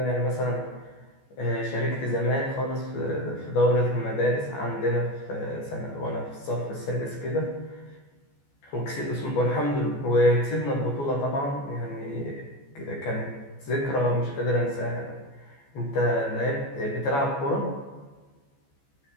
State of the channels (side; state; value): right; late; 14 ms